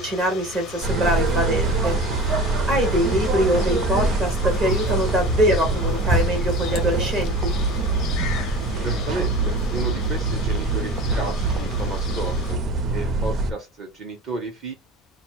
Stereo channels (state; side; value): normal; both; correlation 0.36